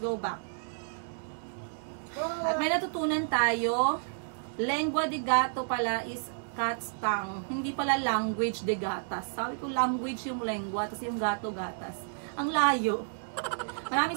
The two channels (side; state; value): left; silent; digital silence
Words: back. At may natutunan tayo. Lengua de gato pala is cat's tongue. Hindi pala language de gatas. Sabi ko language yung lengua, tapos yung gato gatas. Ang layo. Maraming